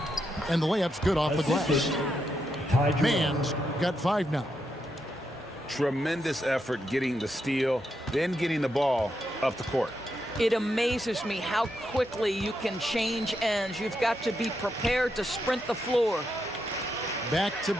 And the layup's good off the glass. Mann's got 5 now. Tremendous effort getting the steal, then getting the ball up the court. It amazes me how quickly you can change ends. You've got to be prepared to sprint the floor. Back to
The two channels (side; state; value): both; normal; correlation 0.82